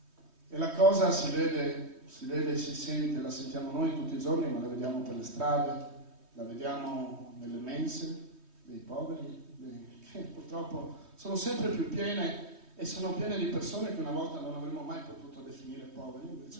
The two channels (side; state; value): left; late; 3.2 ms